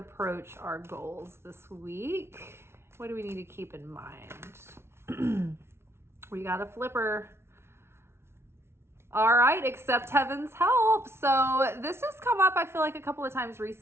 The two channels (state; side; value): late; left; 0.12 ms